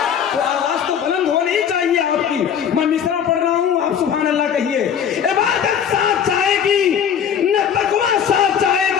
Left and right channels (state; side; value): quieter; right; 8.3 dB